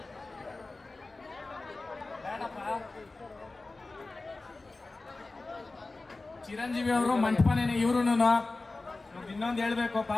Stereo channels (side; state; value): right; quieter; 3.3 dB